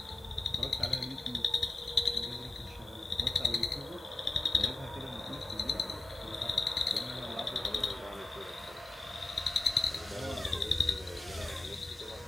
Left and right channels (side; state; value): right; quieter; 3.1 dB